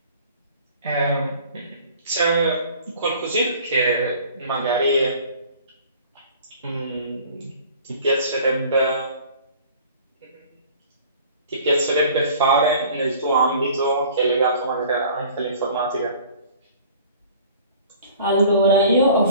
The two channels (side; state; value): both; inverted; correlation -0.48